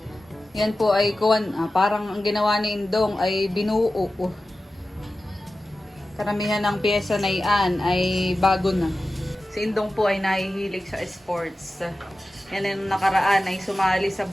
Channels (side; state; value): both; normal; correlation 0.94